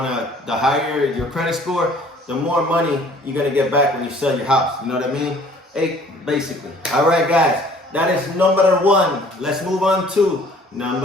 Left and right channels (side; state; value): both; normal; correlation 0.54